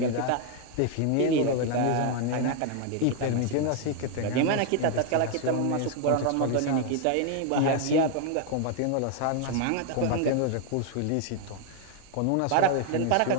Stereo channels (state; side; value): different; both; correlation 0.00